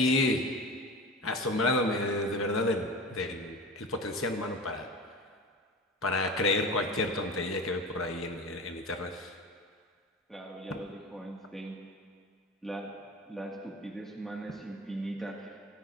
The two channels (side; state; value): both; normal; correlation 0.32